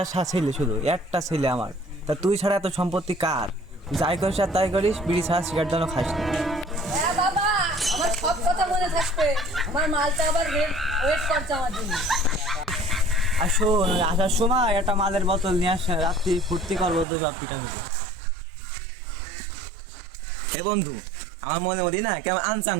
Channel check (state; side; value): drops out; left; at 17.1 s